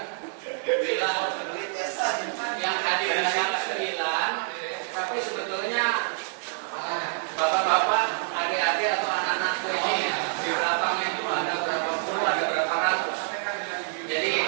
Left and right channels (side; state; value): left; silent; 60 dB below the other